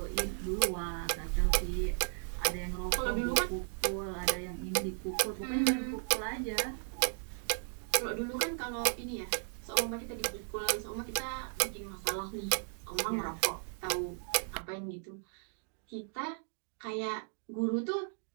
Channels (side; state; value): left; silent; 54 dB below the other